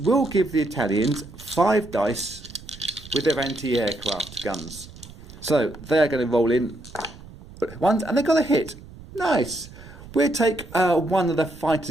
will give the Italians 5 dice with their anti-aircraft guns. So they're going to roll in ones, and they got a hit. Nice. We'll take 1 of the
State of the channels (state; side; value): noise; right; rumble, 17 dB below the sound